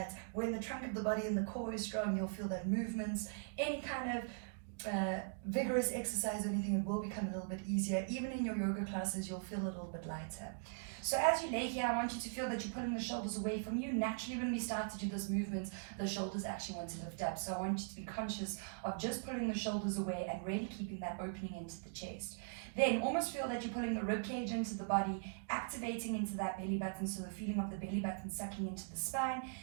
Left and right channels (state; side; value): silent; left; digital silence